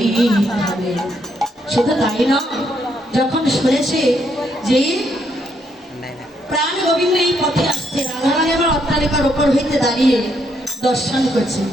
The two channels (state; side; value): normal; both; correlation 0.74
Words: ভাবে। শুধু তাই না, যখন শুনেছে যে প্রাণ গোবিন্দ এই পথে আসছে, রাধারানী আমার অট্টালিকার ওপর হইতে দাঁড়িয়ে দর্শন করছে,